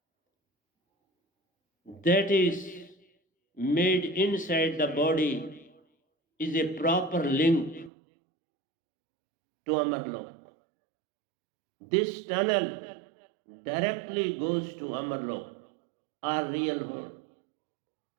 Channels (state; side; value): drops out; left; at 7.9 s